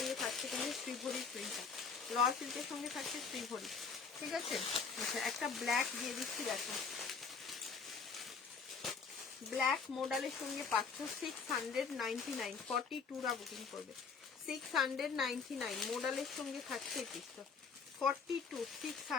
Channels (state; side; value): quieter; right; 5.4 dB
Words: থাকছে কিন্তু শ্রীভরির প্রিন্টটা, র সিল্কের সঙ্গে থাকছে শ্রীভরি, ঠিক আছে। আচ্ছা একটা ব্ল্যাক দিয়ে দিচ্ছি, দেখো ব্ল্যাক মডেলের সঙ্গে পাচ্ছ 699, 42রা বুকিং করবে, 699 মডেলের সঙ্গে থাকছে এই পিসটা, 42